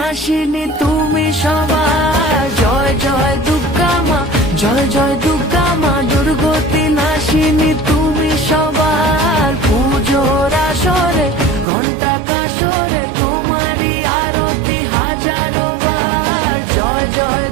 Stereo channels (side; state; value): left; drops out; at 11.7 s